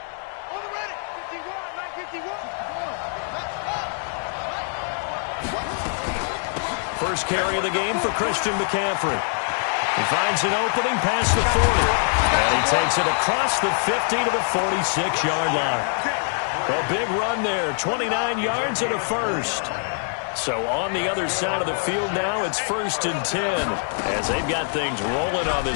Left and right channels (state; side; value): silent; right; 62 dB below the other